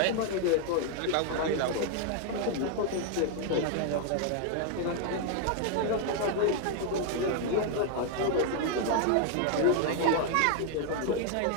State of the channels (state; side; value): different; both; correlation 0.00